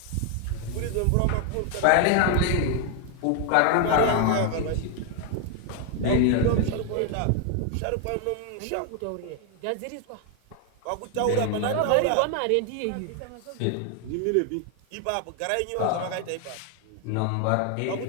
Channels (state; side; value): different; both; correlation 0.00